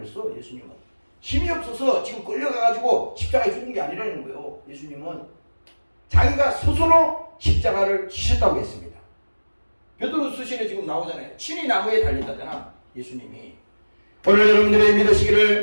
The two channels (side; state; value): both; inverted; correlation -1.00